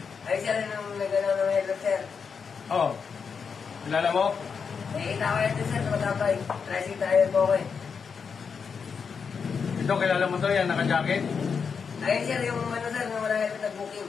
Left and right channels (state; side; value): quieter; right; 6.0 dB